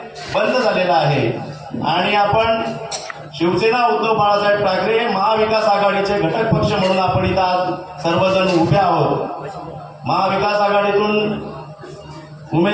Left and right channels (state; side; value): identical; both; correlation 1.00